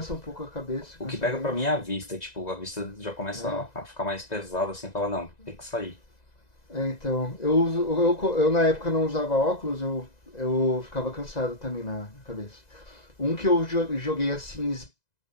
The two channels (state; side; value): late; right; 2.0 ms